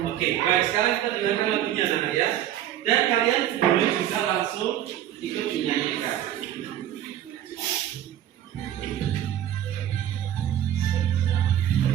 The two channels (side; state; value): left; quieter; 11.5 dB